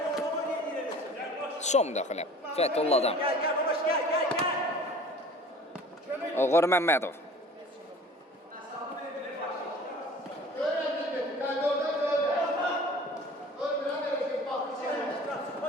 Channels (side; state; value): both; normal; correlation 0.46